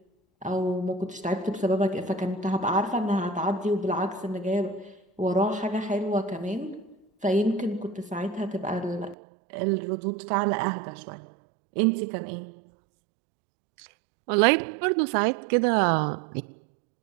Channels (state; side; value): drops out; left; at 9.2 s